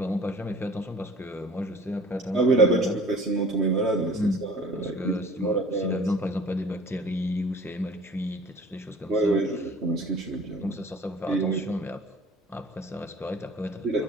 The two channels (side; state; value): both; normal; correlation 0.47